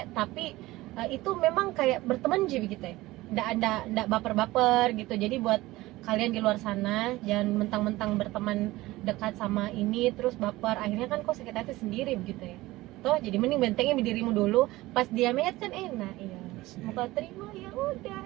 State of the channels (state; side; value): quieter; left; 18.6 dB